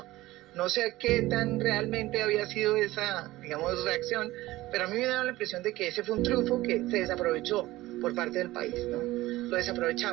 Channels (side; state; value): left; quieter; 17.7 dB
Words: No sé qué tan realmente había sido esa, digamos, reacción, pero a mí me da la impresión de que ese fue un triunfo que se desaprovechó por parte del país, ¿no? Lo